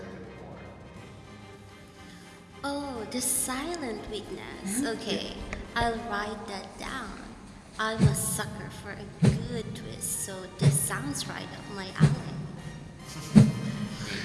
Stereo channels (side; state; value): both; identical; correlation 1.00